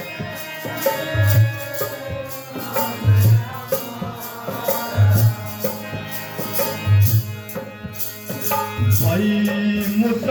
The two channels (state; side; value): identical; both; correlation 1.00